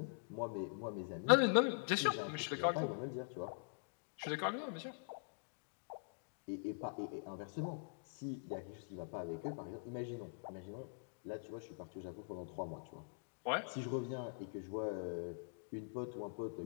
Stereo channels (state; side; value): silent; right; digital silence